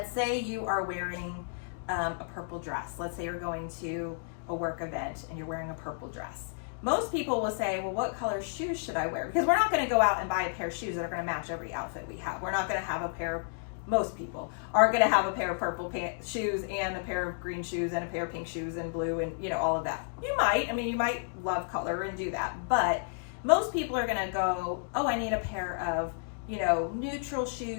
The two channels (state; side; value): silent; right; digital silence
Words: say you are wearing a purple dress. Let's say you're going to a work event and you're wearing a purple dress. Most people will say, well, what color shoes should I wear? Because we're not going to go out and buy a pair of shoes that are going to match every outfit we have. We're not going to have a pair of, most people are going to have a pair of purple shoes and a pair of green shoes and a pair of pink shoes and blue and, you know, all of that. You might love color and do that, but most people are going to go, oh, I need a pair of, you know, neutral